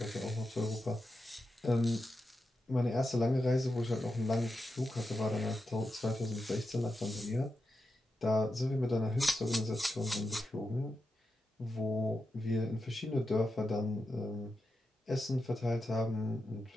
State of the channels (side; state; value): both; normal; correlation 0.88